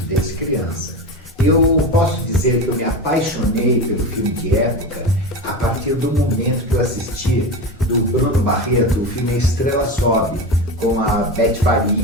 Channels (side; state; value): both; normal; correlation 0.23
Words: desde criança. Eu posso dizer que eu me apaixonei pelo filme de época a partir do momento que eu assisti do Bruno Barreto, o filme Estrela Sobe, com a Beth